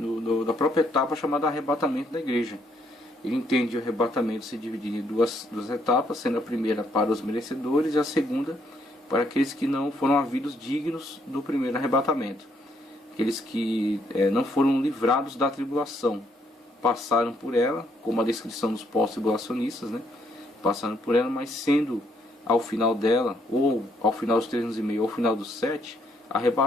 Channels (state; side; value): normal; both; correlation 0.71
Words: própria etapa chamada arrebatamento da igreja. Ele entende o arrebatamento se dividir em duas etapas, sendo a primeira para os merecedores e a segunda para aqueles que não foram havidos dignos do primeiro arrebatamento. Aqueles que não foram livrados da tribulação, passaram por ela, como a descrição dos pós-tribulacionistas, passaram por ela, mas sendo ao final dela, ou ao final dos 3 anos e meio, ou ao final dos 7,